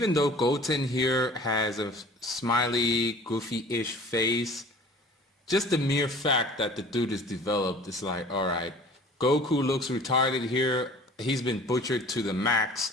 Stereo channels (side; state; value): both; normal; correlation 0.47